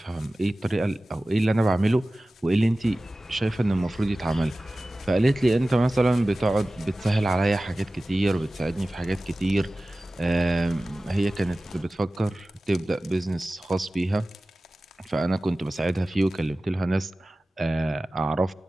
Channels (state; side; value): normal; both; correlation 0.97